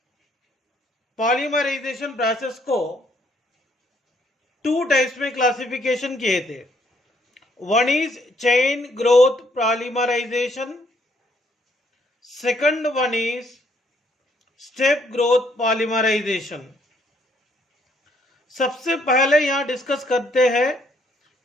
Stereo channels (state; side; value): normal; both; correlation 0.68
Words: पॉलीमराइजेशन प्रोसेस को टू टाइप्स में क्लासिफिकेशन किए थे। One is chain growth polymerization, second one is step growth polymerization. सबसे पहले यहां डिस्कस करते हैं